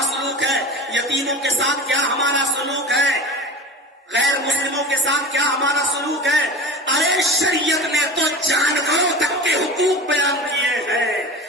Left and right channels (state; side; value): normal; both; correlation 0.34